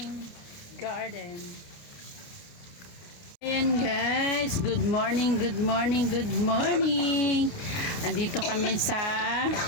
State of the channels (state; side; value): late; right; 30 ms